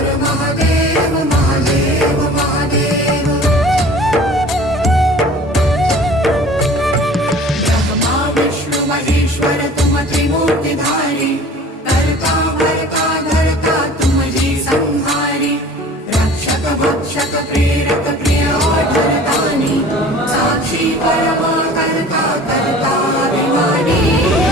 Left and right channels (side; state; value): both; normal; correlation 0.45